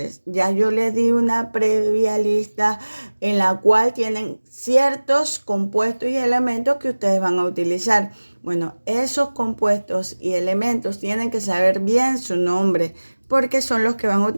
Ya yo les di una previa lista en la cual tienen ciertos compuestos y elementos que ustedes van a utilizar. Bueno, esos compuestos y elementos tienen que saber bien su nombre porque son los que van a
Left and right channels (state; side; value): inverted; both; correlation -1.00